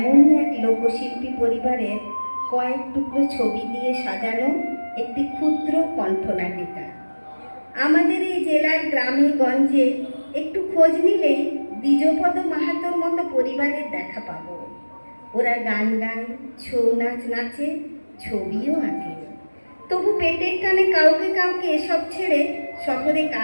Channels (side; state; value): both; inverted; correlation -1.00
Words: এক লোকশিল্পী পরিবারের কয়েক টুকরো ছবি দিয়ে সাজানো একটি ক্ষুদ্র কণ্ঠনাটিকা। আমাদের এই জেলার গ্রামে গঞ্জে একটু খোঁজ নিলেই দ্বিজপদ মাহাতোর মতো পরিবারের দেখা পাবো। ওরা গান গায়, ছৌ নাচ নাচে, ছবিও আঁকে। তবু পেটের টানে কাউকে কাউকে এসব ছেড়ে শহরে